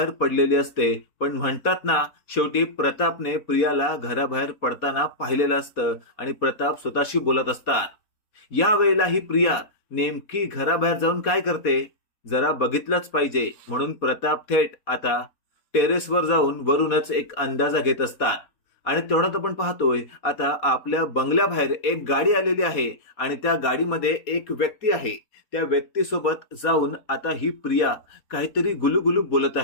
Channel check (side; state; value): right; late; 4.2 ms